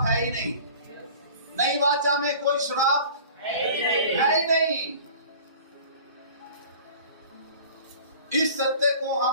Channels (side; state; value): both; inverted; correlation -0.44